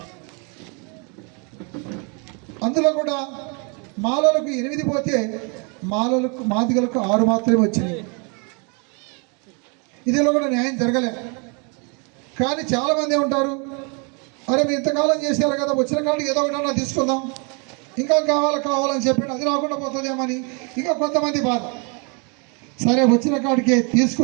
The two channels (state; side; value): quieter; left; 34.7 dB